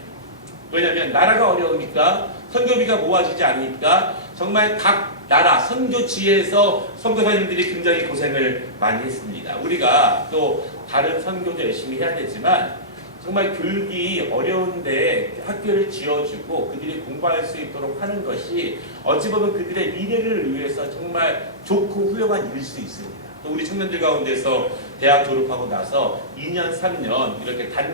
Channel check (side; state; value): both; normal; correlation -0.17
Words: 왜냐하면 나라가 어려우니까 선교비가 모아지지 않으니까 정말 각 나라 선교지에서 선교사님들이 굉장히 고생을 많이 했습니다. 우리가 또 다른 선교도 열심히 해야 되지만 정말 교육이 어려운데 학교를 지어주고 그들이 공부할 수 있도록 하는 것이 어찌 보면 그들의 미래를 위해서 정말 좋고 훌륭한 일일 수 있습니다. 또 우리 청년들 가운데서 대학 졸업하고 나서 2년, 3년 이렇게